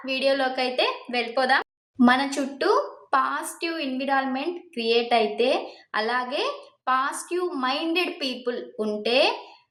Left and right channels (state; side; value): identical; both; correlation 1.00